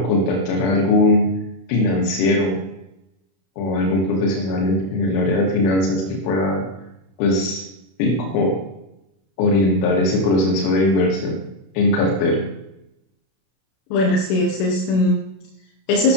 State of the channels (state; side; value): late; right; 32 ms